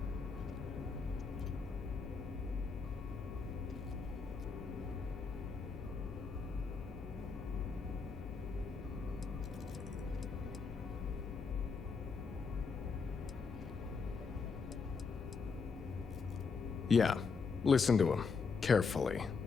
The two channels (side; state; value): right; quieter; 5.1 dB